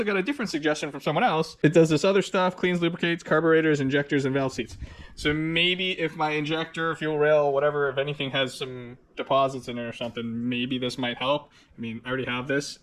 got a different suggestion from someone else. It does this other stuff, cleans, lubricates, carburetors, injectors, and valve seats. So maybe if my injector, fuel rail, whatever, if anything has some deposits in it or something, maybe this might help. I mean, I already have this.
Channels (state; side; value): identical; both; correlation 1.00